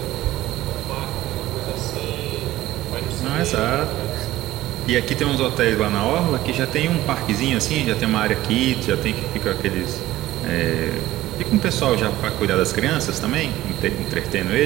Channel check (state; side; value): quieter; left; 15.7 dB